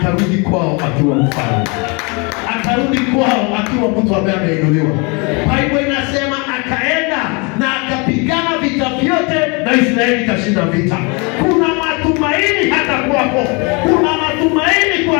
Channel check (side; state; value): right; quieter; 30.7 dB